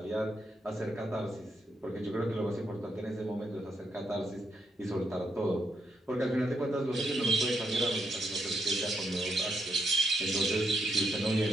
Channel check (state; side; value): normal; both; correlation 0.80